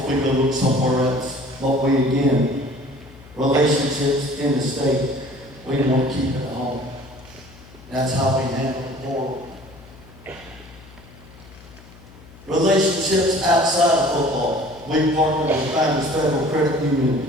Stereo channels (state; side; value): noise; left; hum, 22 dB below the sound